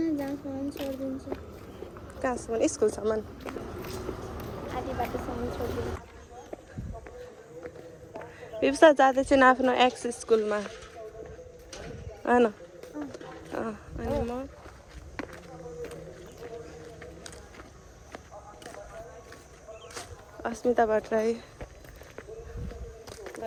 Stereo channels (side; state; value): both; identical; correlation 1.00